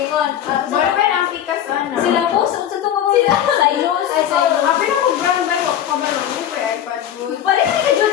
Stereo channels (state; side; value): quieter; right; 10.4 dB